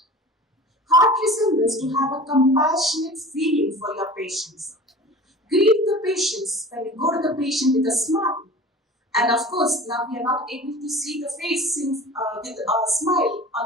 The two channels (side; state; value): both; normal; correlation 0.39